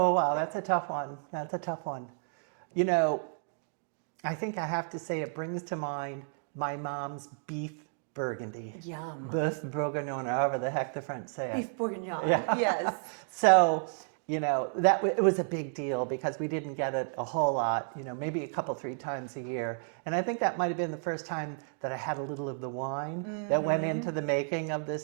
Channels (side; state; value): left; silent; digital silence